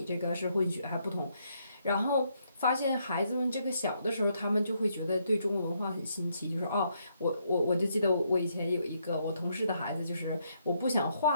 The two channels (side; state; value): both; inverted; correlation -0.75